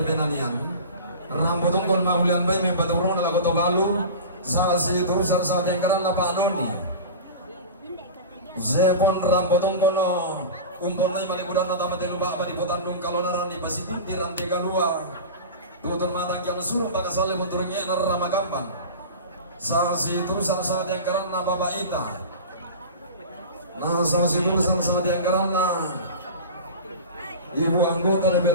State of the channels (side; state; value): both; inverted; correlation -0.31